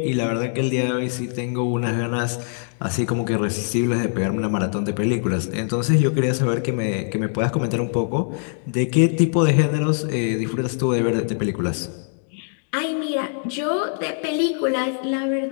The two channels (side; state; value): right; silent; 64 dB below the other